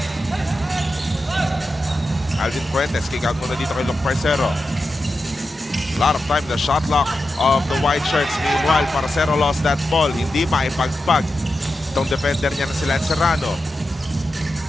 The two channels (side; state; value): both; normal; correlation 0.90